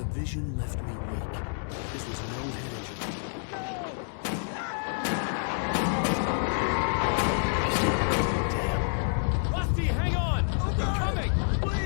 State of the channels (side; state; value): right; silent; digital silence